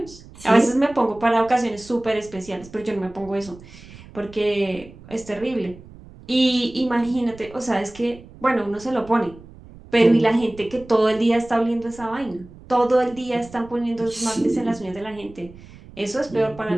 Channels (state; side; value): noise; right; rumble, 20 dB below the sound